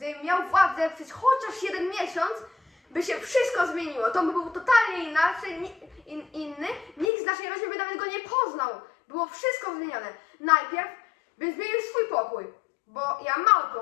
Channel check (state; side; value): drops out; right; at 7.1 s